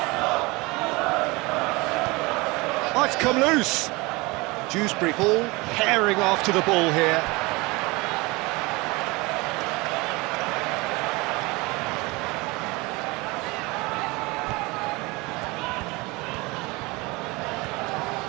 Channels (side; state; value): left; quieter; 24.3 dB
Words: Oh, it's come loose. Dewsbury Hall herring after the ball here.